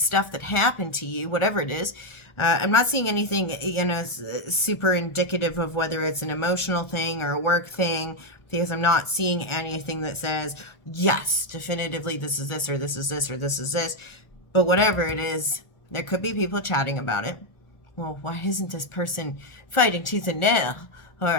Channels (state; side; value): late; right; 1.4 ms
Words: that happened to you, whatever it is. I'm not seeing anything super indicative of whether it's an emotional thing or a work thing, because I'm not seeing anything that says yes, definitively this is this or this is this or this is this. But whatever it is, there could be people chatting about it. well, why isn't this person fighting tooth and nail?